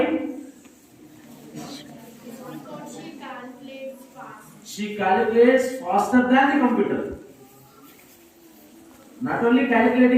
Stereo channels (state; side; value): identical; both; correlation 1.00